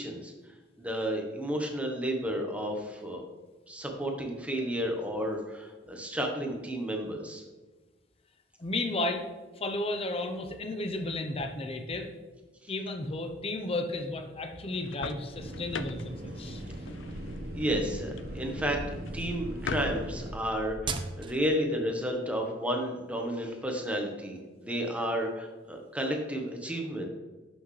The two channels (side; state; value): both; normal; correlation 0.52